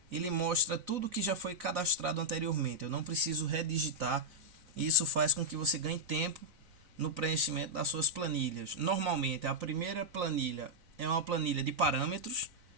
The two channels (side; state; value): left; late; 3.9 ms